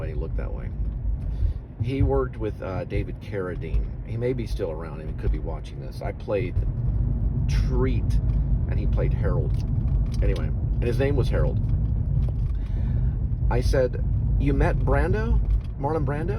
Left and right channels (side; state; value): both; identical; correlation 1.00